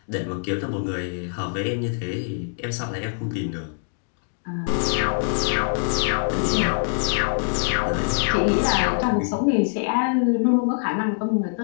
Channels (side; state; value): right; silent; digital silence